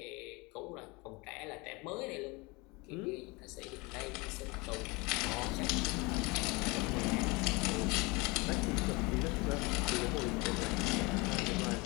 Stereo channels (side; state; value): right; quieter; 26.1 dB